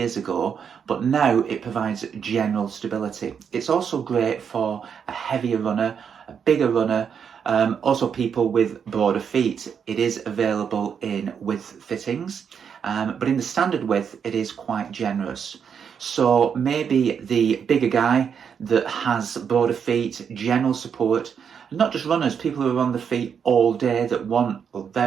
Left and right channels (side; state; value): left; quieter; 7.2 dB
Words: ago, but now it provides general stability. It's also great for a heavier runner, a bigger runner, also people with broader feet. It is available in width fittings, but in the standard width it is quite generous. So maybe the bigger guy that has broader feet, general support, not just runners, people who are on the feet all day that want a